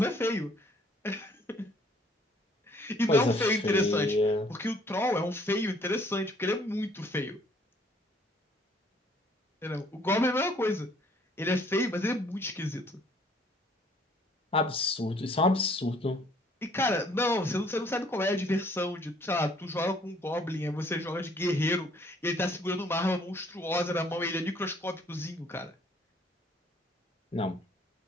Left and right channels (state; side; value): normal; both; correlation 0.61